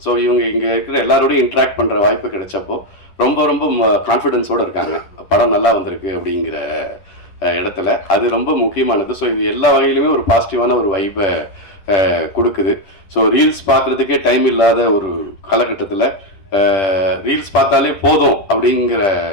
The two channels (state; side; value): late; right; 10 ms